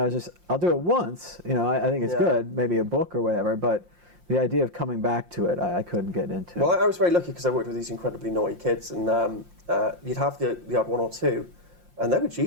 was just, I'll do it once. I think it's good, maybe a book or whatever, but the idea of coming back to it, I couldn't get into. Well, I was very lucky because I worked with these incredibly naughty kids, and you'd have the odd one or two, and they were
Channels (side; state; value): left; late; 5.7 ms